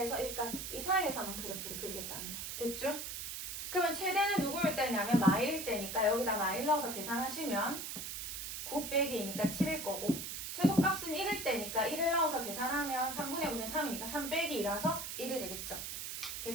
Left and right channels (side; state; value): right; noise; hiss, 6 dB below the sound